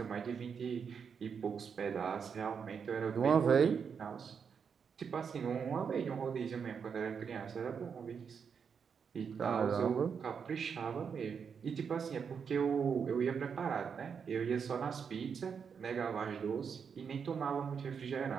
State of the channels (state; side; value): quieter; left; 6.5 dB